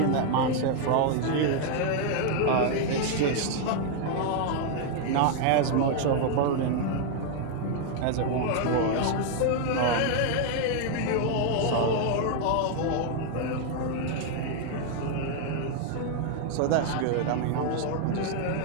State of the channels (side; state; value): both; different; correlation 0.00